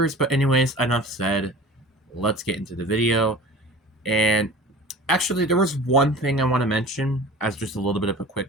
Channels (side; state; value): both; normal; correlation 0.40